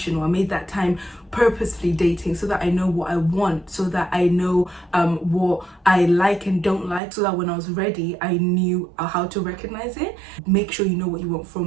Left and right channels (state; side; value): drops out; left; at 7.0 s